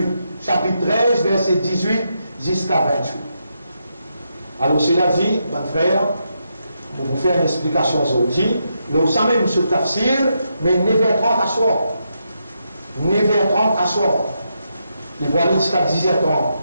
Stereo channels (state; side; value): inverted; both; correlation -0.82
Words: Chapitre 13, verset 18 jusqu'à 28. Alors, cela dit, mon frère, pour vous faire une explication aujourd'hui, nous sommes même sur tafsir, mais 9h30 à soir. 9h30 à soir. Il va aller jusqu'à 10h30.